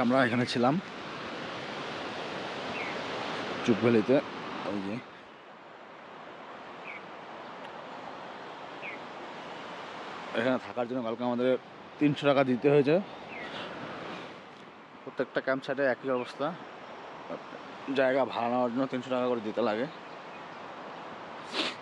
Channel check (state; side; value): identical; both; correlation 1.00